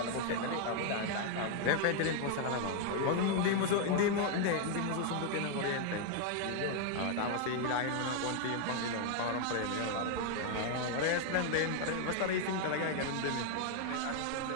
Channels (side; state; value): both; different; correlation 0.00